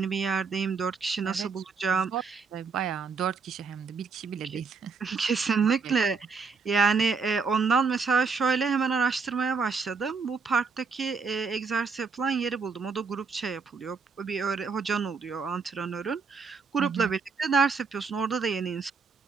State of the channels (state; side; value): quieter; left; 5.0 dB